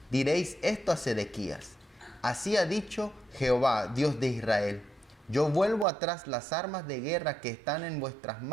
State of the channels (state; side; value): drops out; left; at 5.9 s